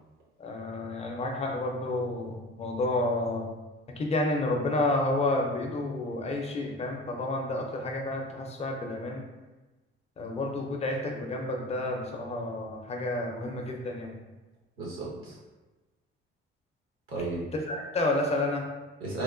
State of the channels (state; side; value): normal; both; correlation 0.36